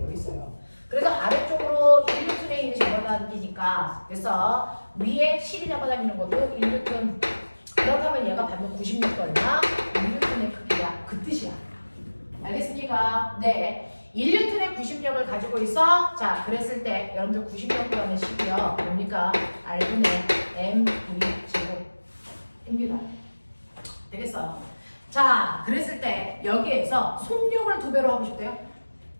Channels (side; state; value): both; inverted; correlation -1.00